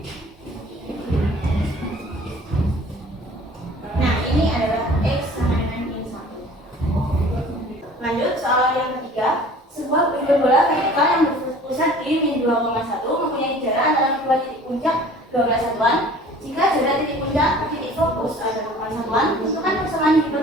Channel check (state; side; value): normal; both; correlation 0.48